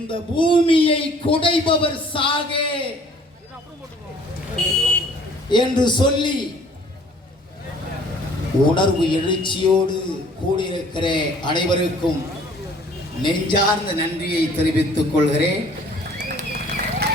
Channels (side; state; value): both; normal; correlation 0.55